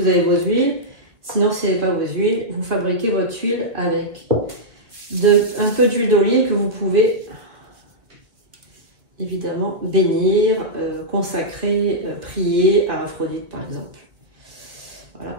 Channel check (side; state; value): left; late; 2.0 ms